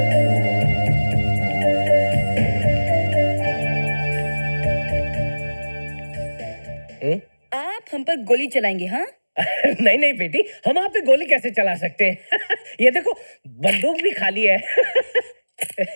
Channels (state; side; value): inverted; both; correlation -1.00